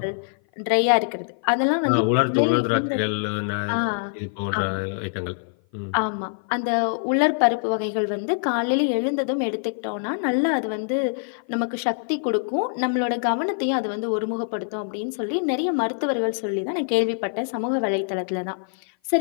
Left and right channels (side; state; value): right; silent; 55 dB below the other